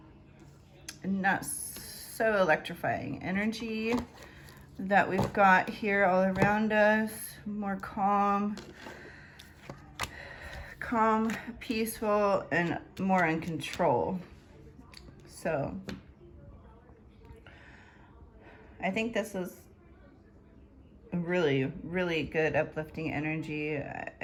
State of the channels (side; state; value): both; identical; correlation 1.00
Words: Not so electrifying energy that we've got here all around us. More calm, peaceful, and more in control. So I think this is really, really good uplifting energy.